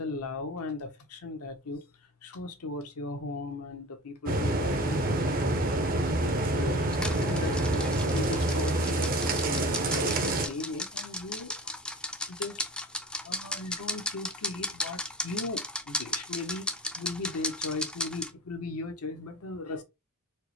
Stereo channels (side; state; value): both; normal; correlation 0.37